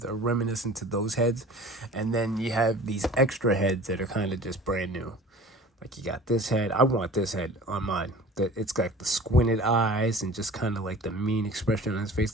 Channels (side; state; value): both; normal; correlation 0.43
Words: are reminiscent to those heads. And then you have these extra heads that are kind of just brand new. Like, you got this head. I want this head on mine. It's got the squinted eyes and just kind of like the mean expression on his face.